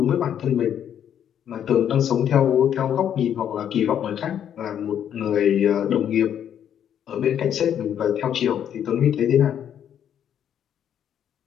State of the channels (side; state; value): right; quieter; 9.4 dB